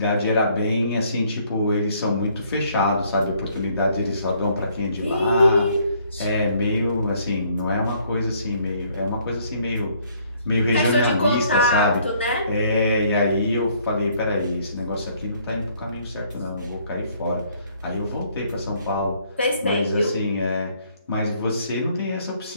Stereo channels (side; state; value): both; inverted; correlation -0.64